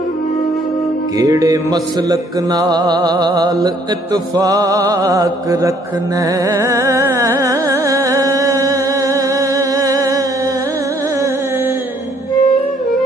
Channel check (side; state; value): both; normal; correlation 0.63